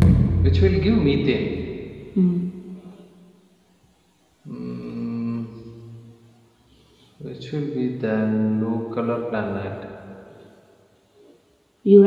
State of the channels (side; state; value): both; identical; correlation 1.00